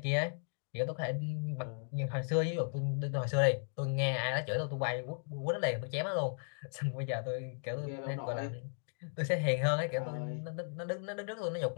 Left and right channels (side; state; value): right; silent; digital silence